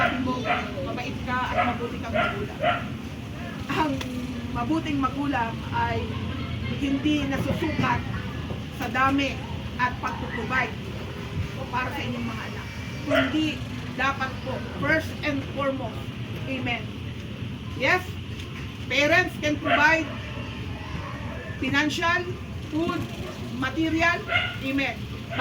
mo, mabait ka at mabuti kang magulang. Ang mabuting magulang ay hindi nasusukat sa dami at pagtutubay para sa inyong mga anak. Kundi dapat po, first and foremost, amen. Yes, parents can provide financial, food, material, amen.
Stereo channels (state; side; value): identical; both; correlation 1.00